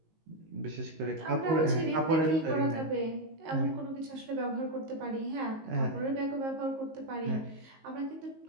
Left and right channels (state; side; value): late; left; 19 ms